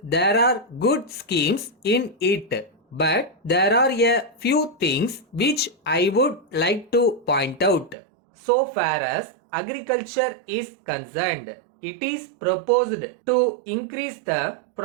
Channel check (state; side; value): drops out; left; at 8.0 s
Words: are good schemes in it. But there are a few things which I would like to point out. So far as agriculture is concerned, it is proposed to increase the